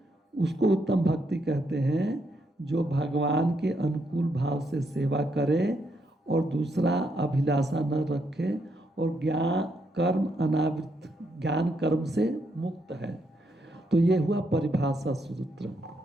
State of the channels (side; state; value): both; normal; correlation 0.77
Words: उसको उत्तम भक्ति कहते हैं, जो भगवान के अनुकूल भाव से सेवा करे और दूसरा अभिलाषा न रखे, और ज्ञान कर्म अनावृत, ज्ञान कर्म से मुक्त है। तो ये हुआ परिभाषा सूत्र।